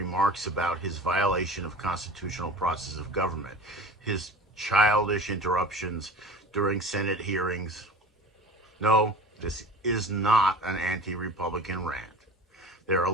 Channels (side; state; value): both; normal; correlation 0.37